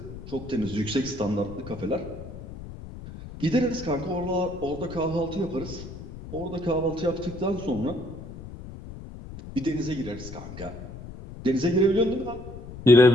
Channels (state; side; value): noise; left; rumble, 13 dB below the sound